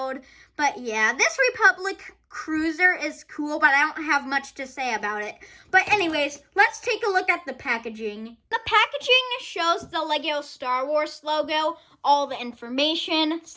but yeah, this Republic Cruiser is cool, but I don't have much to say about it. But anyways, let's take a look at the packaging. The packaging shows the Lego Star Wars logo, all the information,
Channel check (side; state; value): both; identical; correlation 1.00